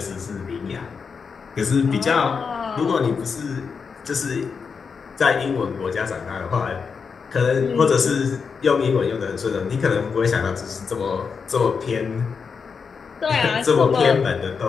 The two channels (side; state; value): right; quieter; 5.7 dB